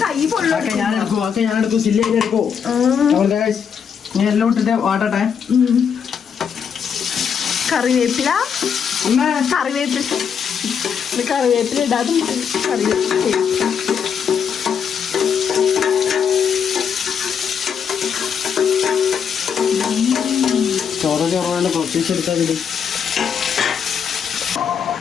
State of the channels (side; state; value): right; quieter; 7.2 dB